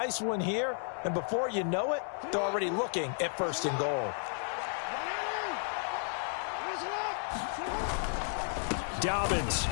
one here, and before you know it, they're already looking at 1st and goal. Dobbins.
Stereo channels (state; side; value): silent; right; 56 dB below the other